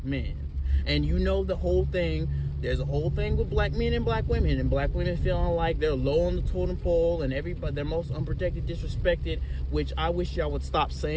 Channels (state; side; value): identical; both; correlation 1.00